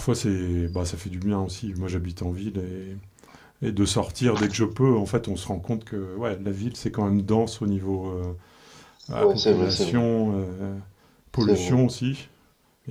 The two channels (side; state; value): both; identical; correlation 1.00